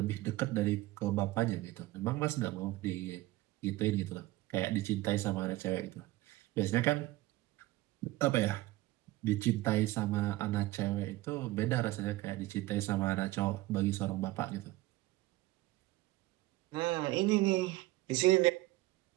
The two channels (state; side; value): quieter; left; 18.1 dB